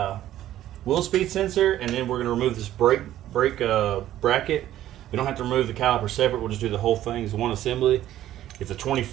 wheel speed sensor, and then we're gonna remove this brake bracket. We don't have to remove the caliper separate. We'll just do the whole thing as one assembly. It's a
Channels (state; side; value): quieter; left; 12.9 dB